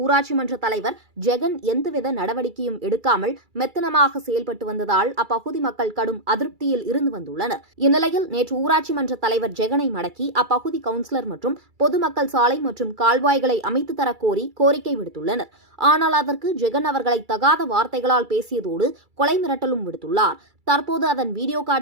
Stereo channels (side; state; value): left; late; 2.3 ms